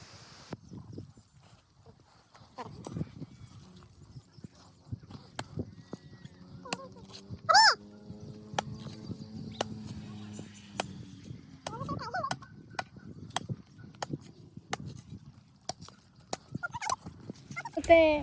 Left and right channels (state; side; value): identical; both; correlation 1.00